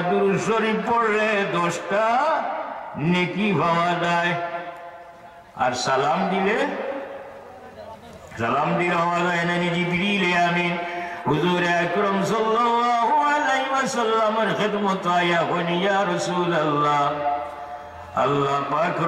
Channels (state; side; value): identical; both; correlation 1.00